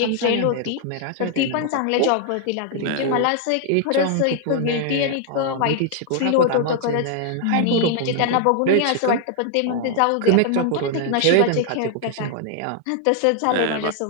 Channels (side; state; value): both; different; correlation 0.00